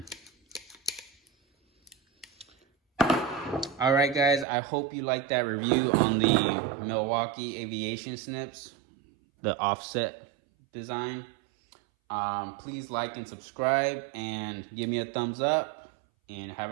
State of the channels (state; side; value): drops out; left; at 4.5 s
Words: All right, guys. I hope you liked that review on the Milwaukee Aviation Snips, the offset design. Please like and subscribe and give me a thumbs up, and have